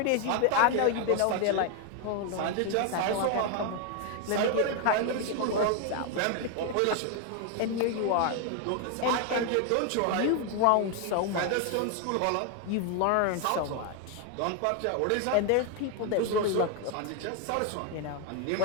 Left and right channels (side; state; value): both; different; correlation 0.01